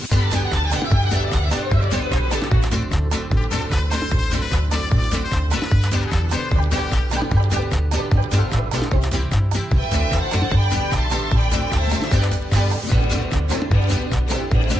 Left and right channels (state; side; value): normal; both; correlation 0.88